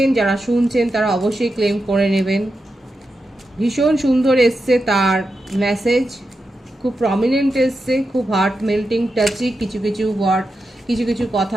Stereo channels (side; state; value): both; normal; correlation 0.88